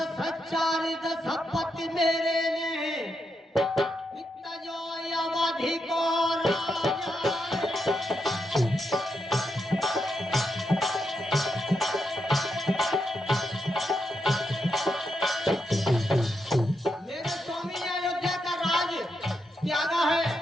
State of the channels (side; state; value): both; normal; correlation 0.83